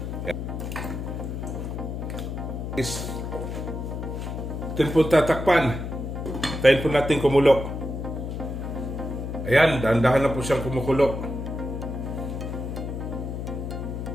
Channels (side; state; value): left; noise; hum, 5 dB below the sound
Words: Atin po tatakpan. Tayin po natin kumulo. Ayan, dahan-dahan na po siyang kumukulo.